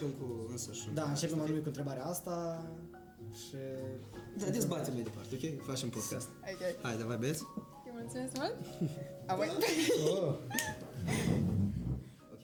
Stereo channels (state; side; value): identical; both; correlation 1.00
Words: cu însăși. Da, începem anume cu întrebarea asta și... Da, dezbatem mai departe, ok? Facem podcast. Ok. Hai, davai, băieți. Îi mulțumesc mult. Apoi. Oh. Ok.